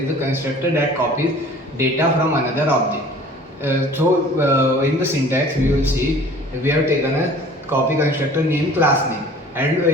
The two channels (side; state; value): both; normal; correlation 0.47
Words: the constructor that copies data from another object. In the syntax we will see we have taken a copy constructor name class name, and